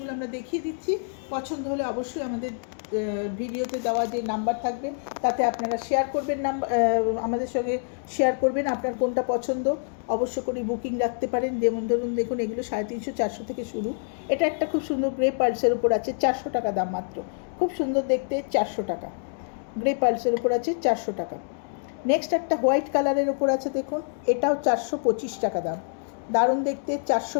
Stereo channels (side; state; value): right; silent; digital silence